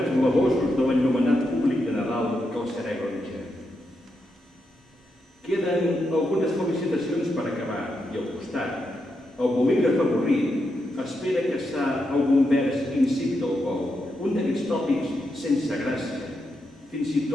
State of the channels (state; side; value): normal; both; correlation 0.84